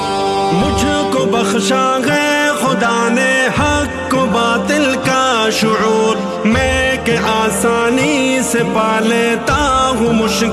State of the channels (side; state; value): both; identical; correlation 1.00